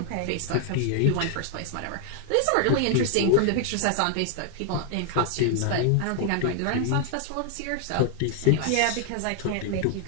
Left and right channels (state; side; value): different; both; correlation 0.00